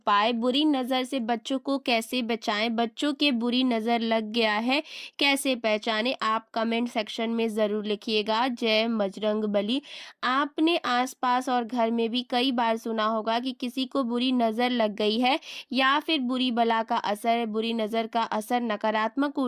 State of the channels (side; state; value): both; identical; correlation 1.00